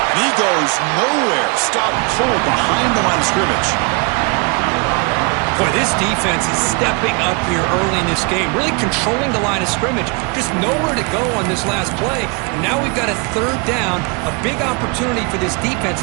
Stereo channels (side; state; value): left; quieter; 31.4 dB